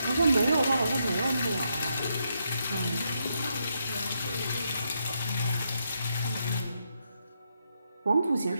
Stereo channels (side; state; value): both; inverted; correlation -0.80